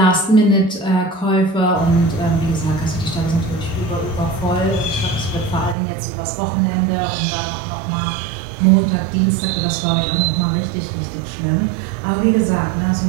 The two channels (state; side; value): drops out; left; at 5.8 s